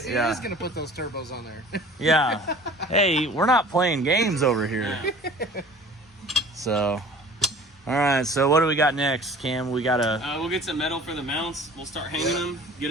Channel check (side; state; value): both; normal; correlation 0.46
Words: He Yeah. is gonna put those turbos on there. Yeah. Hey, we're not playing games over here. Yeah. So, all right. So what do we got next, Cam? We got We'll get some metal for the mounts. We'll start hanging them, get